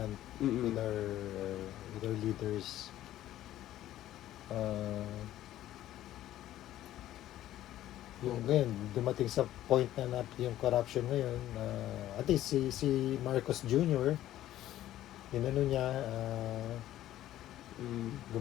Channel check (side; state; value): right; quieter; 13.4 dB